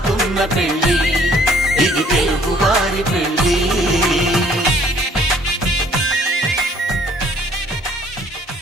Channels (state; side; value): normal; both; correlation 0.60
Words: పెళ్ళి ఇది తెలుగువారి పెళ్ళి